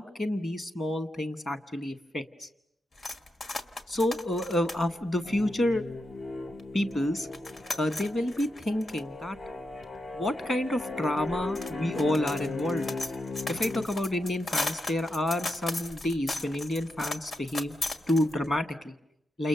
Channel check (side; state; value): both; normal; correlation 0.86